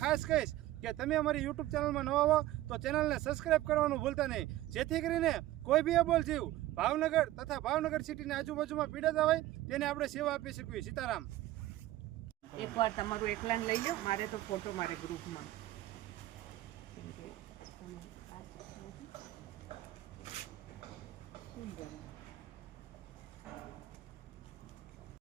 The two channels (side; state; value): left; quieter; 15.6 dB